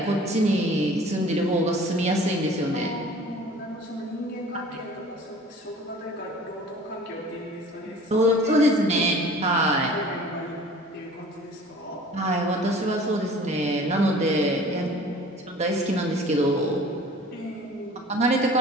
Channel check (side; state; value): both; normal; correlation 0.46